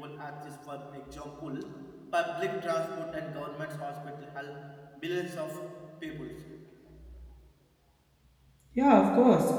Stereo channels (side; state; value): both; identical; correlation 1.00